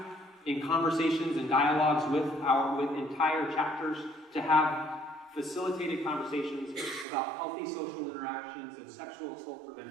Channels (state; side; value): drops out; left; at 7.1 s